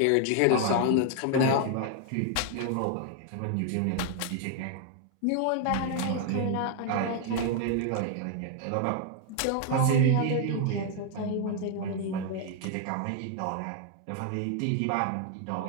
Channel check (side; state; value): both; different; correlation 0.00